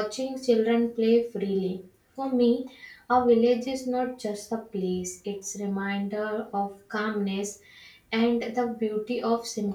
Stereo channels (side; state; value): both; identical; correlation 1.00